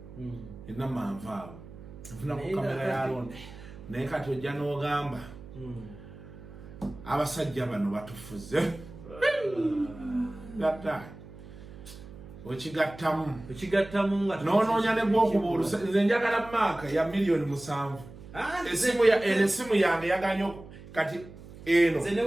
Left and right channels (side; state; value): right; noise; hum, 17 dB below the sound